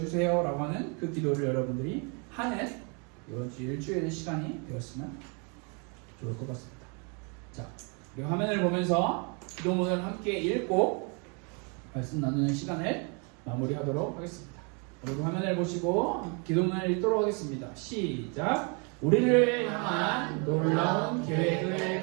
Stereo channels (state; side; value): quieter; left; 34.8 dB